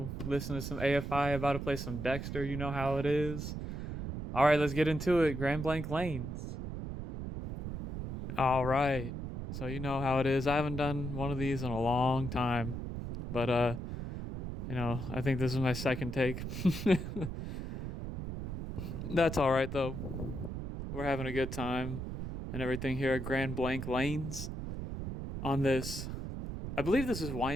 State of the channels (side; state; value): right; noise; rumble, 6 dB below the sound